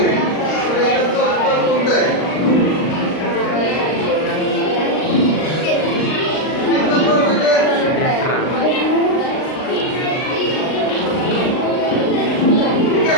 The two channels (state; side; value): late; right; 39 ms